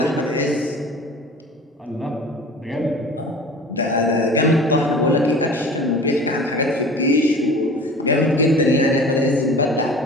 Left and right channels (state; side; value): normal; both; correlation 0.41